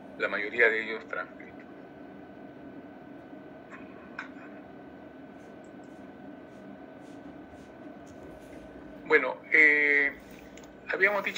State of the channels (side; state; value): both; identical; correlation 1.00